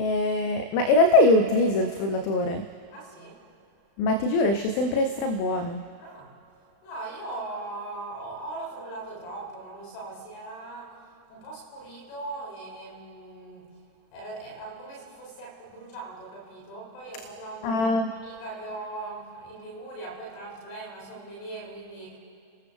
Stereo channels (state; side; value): late; right; 36 ms